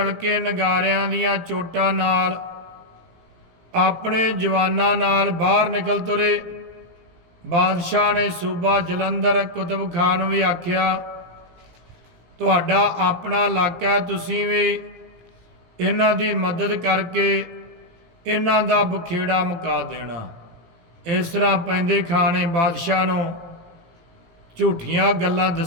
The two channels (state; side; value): late; left; 17 ms